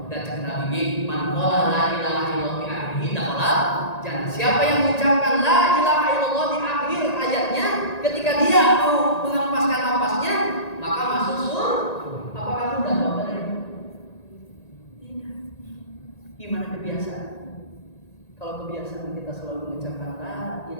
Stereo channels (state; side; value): late; right; 1.9 ms